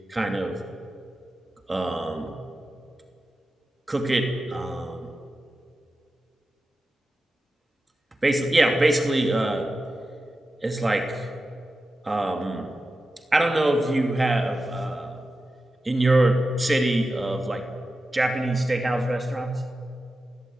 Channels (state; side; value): normal; both; correlation 0.92